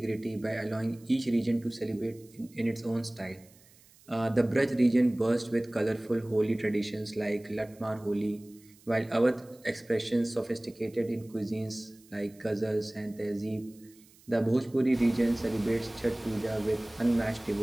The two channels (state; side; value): noise; right; hiss, 27 dB below the sound